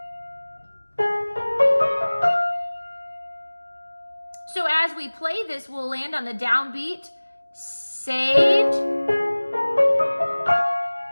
So as we play this, we'll land on the downbeat, saved.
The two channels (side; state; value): both; inverted; correlation -1.00